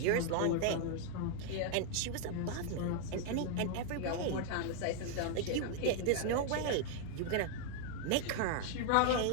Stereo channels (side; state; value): both; different; correlation 0.00